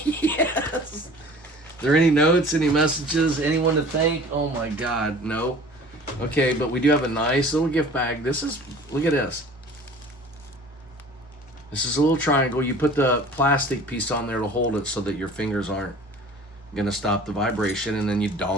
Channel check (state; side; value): normal; both; correlation 0.45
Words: Are there any notes, any messages, anyone to thank? Oh my God, no. Okay, but we do have a nice little gift bag. Look at this. This is a little triangle. You put the plastic piece on there to hold it so that your fingers aren't gonna stop the vibration, and then you